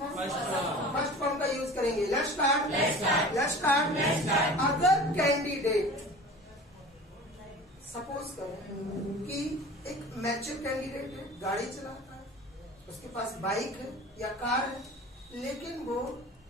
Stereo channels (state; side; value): normal; both; correlation 0.39